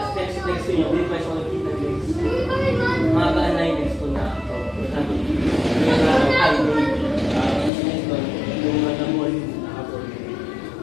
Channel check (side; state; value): right; drops out; at 7.7 s